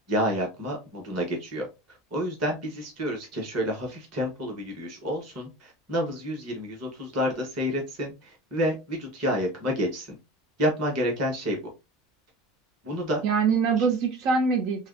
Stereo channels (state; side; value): normal; both; correlation 0.37